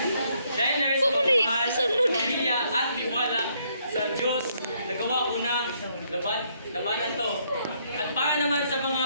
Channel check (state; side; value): inverted; both; correlation -0.71